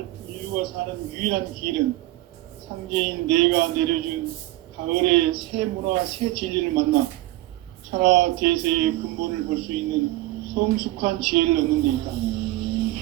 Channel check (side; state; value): left; quieter; 17.1 dB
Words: 인류가 사는 유일한 길은 상제인 내가 내려준 가을의 새 문화, 새 진리를 만나 천하 대세의 근본을 볼 수 있는 성숙한 지혜를 얻는 데